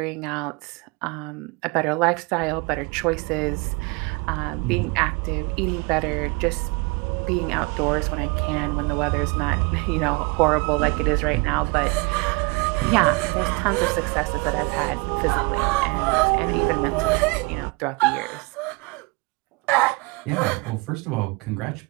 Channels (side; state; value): left; quieter; 28.1 dB